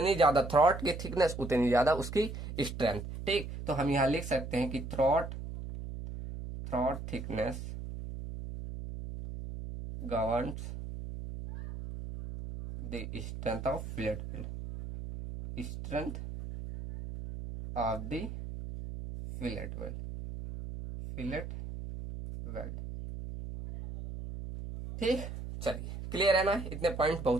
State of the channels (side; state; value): right; noise; hum, 8 dB below the sound